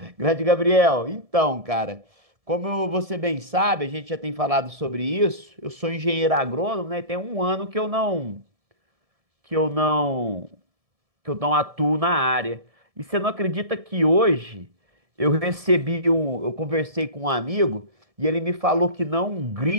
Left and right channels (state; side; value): late; left; 1.7 ms